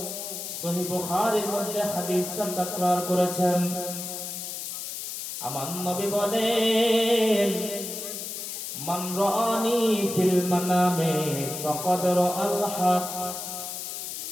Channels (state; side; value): noise; left; hiss, 6 dB below the sound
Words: সহিহ বুখারীর মধ্যে হাদিসটা তাকরার করেছেন। আমার নবী বলেন, মান রাআনি ফিল মানামে ফাকাদ রাআল হক।